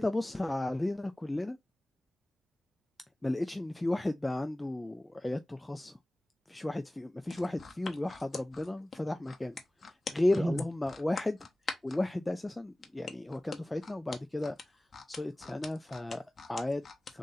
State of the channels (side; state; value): both; normal; correlation 0.98